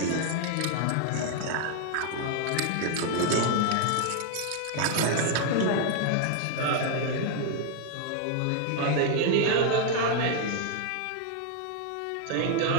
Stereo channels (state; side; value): different; both; correlation 0.00